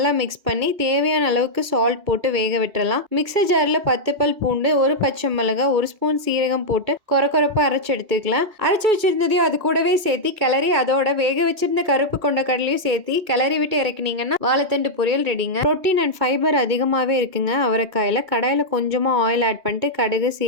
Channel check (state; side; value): late; left; 2.3 ms